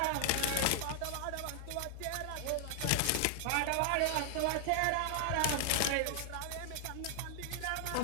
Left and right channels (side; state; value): both; different; correlation 0.00